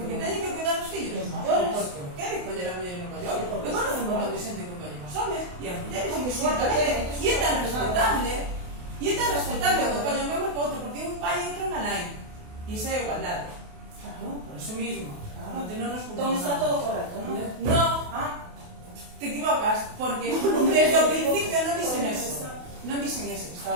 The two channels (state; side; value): late; left; 28 ms